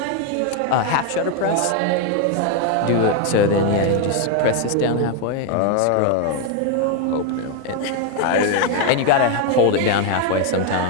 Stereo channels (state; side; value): different; both; correlation 0.01